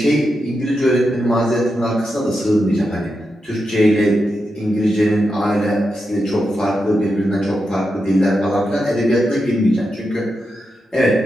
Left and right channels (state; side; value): normal; both; correlation 0.87